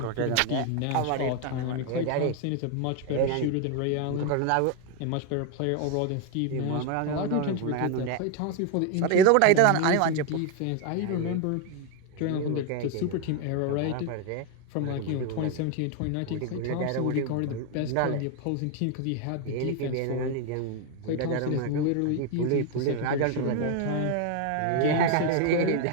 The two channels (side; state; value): both; different; correlation 0.01